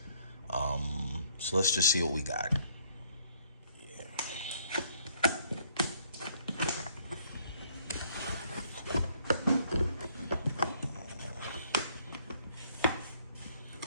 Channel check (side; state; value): both; inverted; correlation -0.64